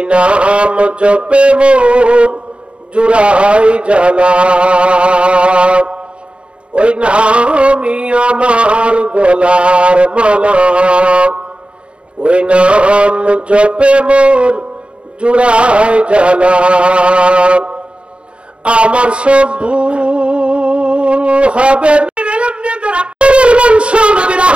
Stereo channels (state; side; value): late; left; 0.057 ms